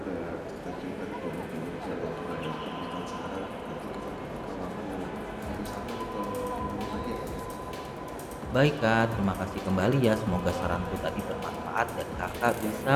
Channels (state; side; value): identical; both; correlation 1.00